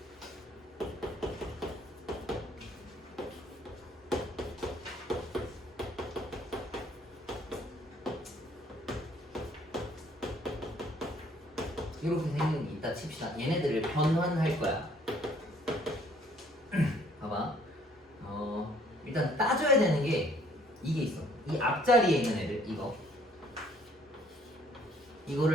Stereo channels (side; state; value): both; normal; correlation 0.61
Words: 이렇게 생긴 게 있다 칩시다. 얘네들을 변환할 거야. 봐봐. 일단 따져야 되는 게 이게 있어. 이 앞자리에 있는 애들